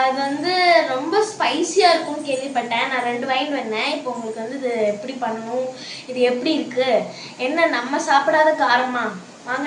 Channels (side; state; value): both; identical; correlation 1.00